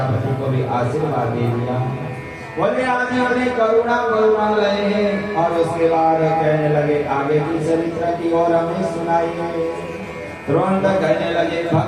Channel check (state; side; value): identical; both; correlation 1.00